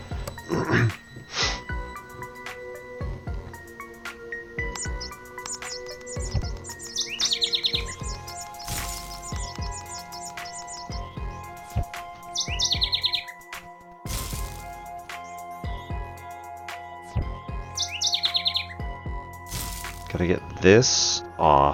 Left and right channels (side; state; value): both; identical; correlation 1.00